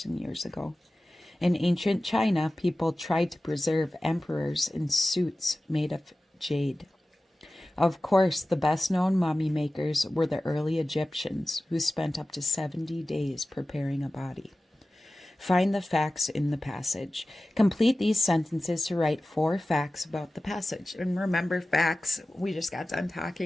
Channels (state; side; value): normal; both; correlation 0.96